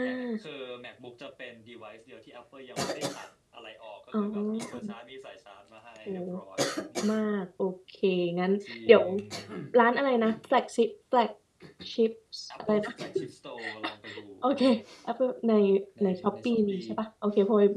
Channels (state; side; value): identical; both; correlation 1.00